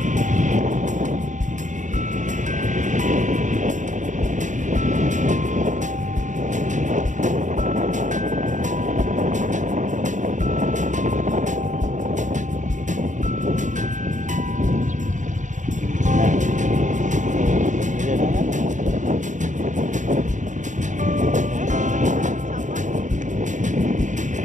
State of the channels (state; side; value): late; left; 0.36 ms